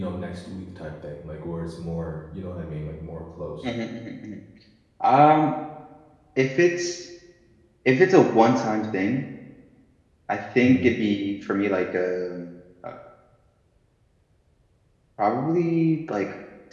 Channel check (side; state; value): both; identical; correlation 1.00